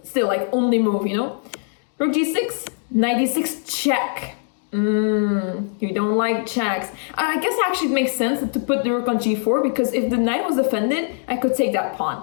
still, like, only move, you know? Rook g6, knight d6, check. You don't like checks. I guess actually it makes sense to put the rook on g4 because if the knight was defended, I could take that pawn.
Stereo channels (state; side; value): silent; right; 60 dB below the other